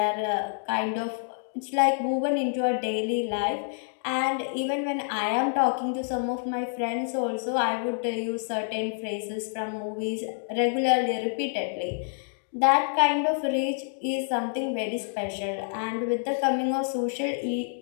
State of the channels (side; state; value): right; silent; digital silence